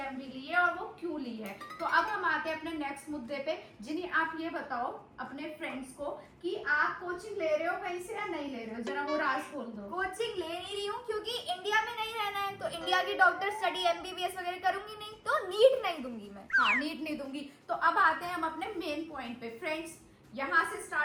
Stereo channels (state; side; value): identical; both; correlation 1.00